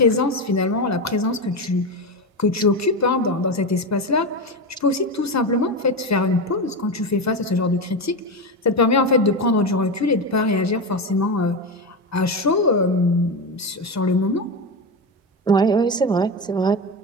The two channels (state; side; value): normal; both; correlation 0.16